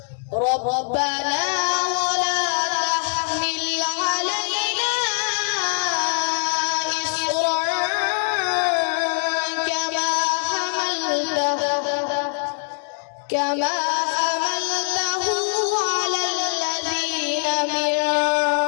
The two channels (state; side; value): silent; right; 64 dB below the other